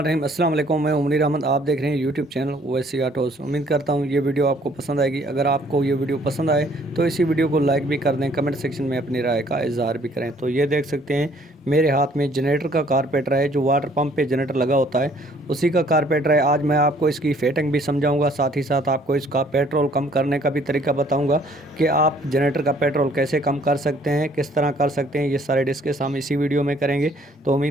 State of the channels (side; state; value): both; normal; correlation 0.60